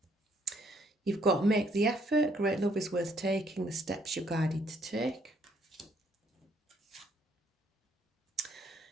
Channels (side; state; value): both; normal; correlation 0.68